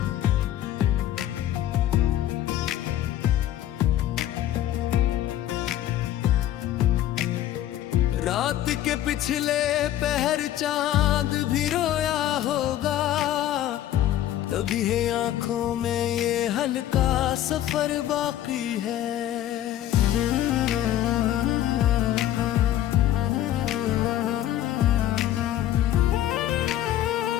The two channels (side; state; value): right; quieter; 12.5 dB